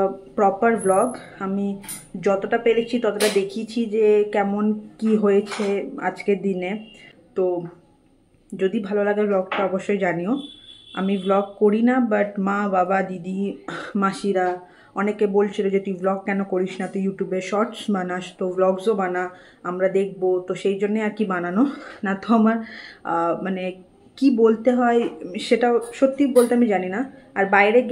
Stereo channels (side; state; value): both; identical; correlation 1.00